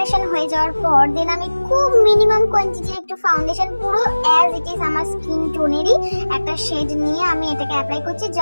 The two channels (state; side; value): inverted; both; correlation -1.00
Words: হয়ে যাওয়ার পর দেন আমি খুব মিনিমাম কোয়ান্টিটির একটু ফাউন্ডেশন, পুরো অ্যাজ ইট ইজ আমার স্কিন টোনেরই একটা শেড নিয়ে আমি এটাকে অ্যাপ্লাই করছি,